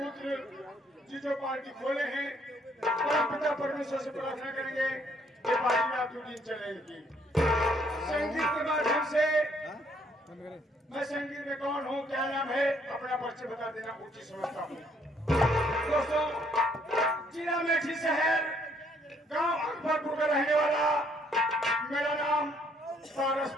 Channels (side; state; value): both; normal; correlation 0.67